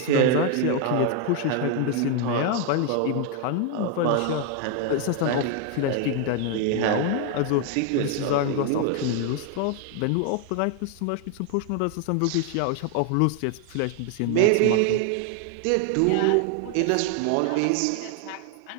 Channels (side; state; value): both; different; correlation 0.01